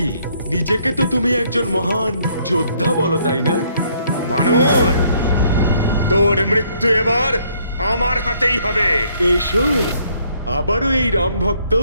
নিজেকে তো তুমি একজন মহান যোদ্ধা বলো, তাই না? বানর, তোর মৃত্যু এবার আমার হাতেই হবে। এসো, আবারও এই রাম ভক্ত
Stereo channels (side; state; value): both; inverted; correlation -0.67